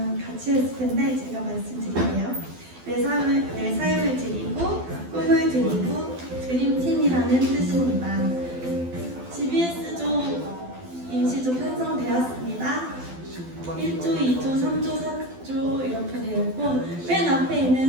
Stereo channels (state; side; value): late; left; 12 ms